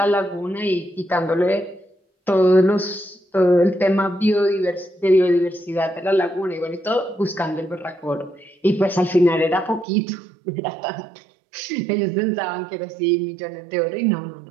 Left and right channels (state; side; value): drops out; left; at 9.9 s